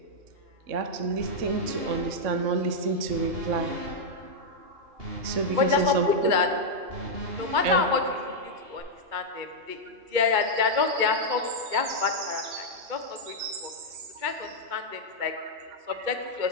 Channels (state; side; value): late; left; 2.2 ms